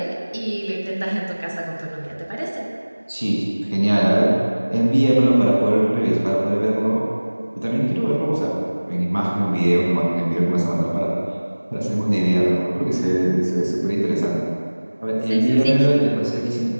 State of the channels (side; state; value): both; inverted; correlation -1.00